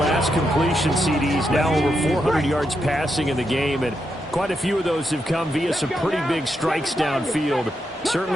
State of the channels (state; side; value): normal; both; correlation 0.83